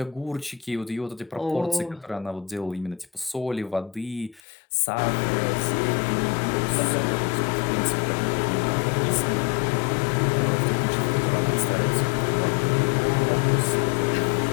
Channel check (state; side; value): drops out; right; at 4.4 s